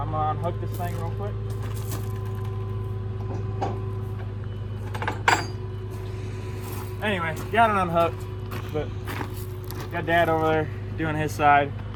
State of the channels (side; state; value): both; identical; correlation 1.00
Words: gonna unhook this thing real quick. Anyway, got it unhooked, but got Dad over there doing his side.